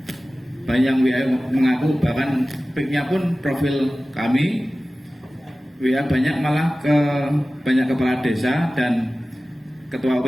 banyak WA mengaku, bahkan pic-nya pun profil kami WA banyak, malah ke banyak kepala desa dan ketua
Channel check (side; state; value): both; normal; correlation 0.96